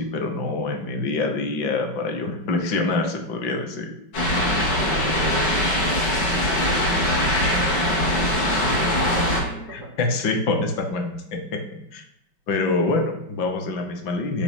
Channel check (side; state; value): right; late; 5.2 ms